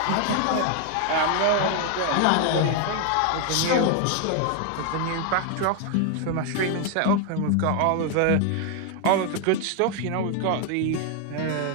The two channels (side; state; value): both; different; correlation 0.00